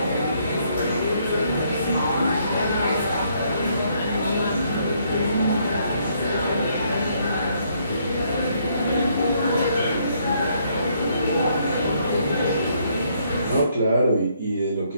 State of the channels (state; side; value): inverted; both; correlation -0.70